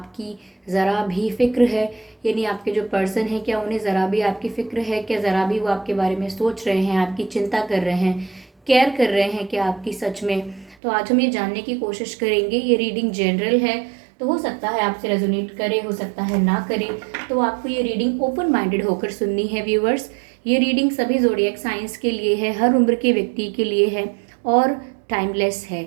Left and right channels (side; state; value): left; drops out; at 10.8 s